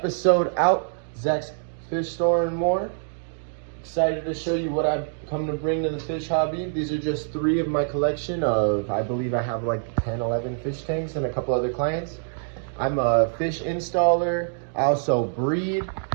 out, Zach's Fish Store and More. Excited to show you what I've come to bring to the fish hobby. These are just 3 of my collection of, I believe I have like 10, 11 fish tanks and a couple other clients. I'm a fish installer, I also breed,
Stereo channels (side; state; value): left; silent; digital silence